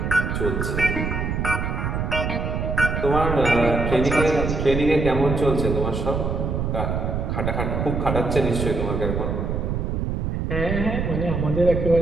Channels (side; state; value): right; noise; rumble, 1 dB below the sound